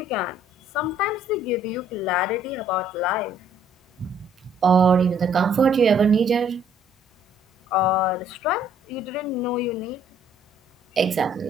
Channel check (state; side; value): normal; both; correlation 0.62